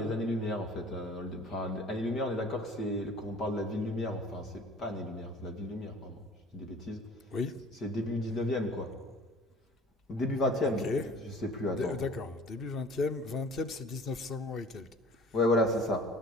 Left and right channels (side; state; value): both; normal; correlation 0.47